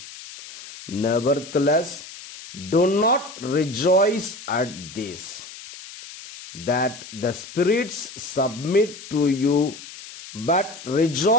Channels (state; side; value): noise; left; hiss, 15 dB below the sound